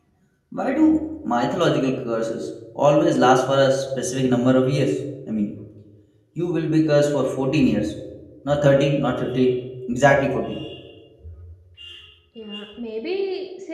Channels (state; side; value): identical; both; correlation 1.00